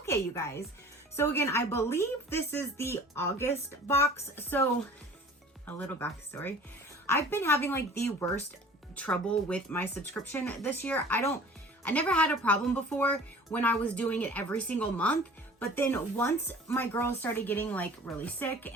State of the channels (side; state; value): both; normal; correlation 0.45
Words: you guys. So again, I believe this is the August box. So a little backstory. I've been having like the worst trouble with my subscription this year. I never had a problem before when I was doing it every single month. But then once my girls started getting like really sick